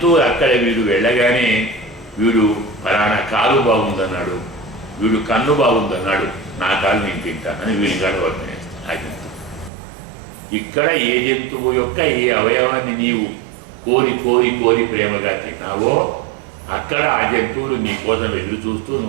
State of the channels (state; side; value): drops out; left; at 9.7 s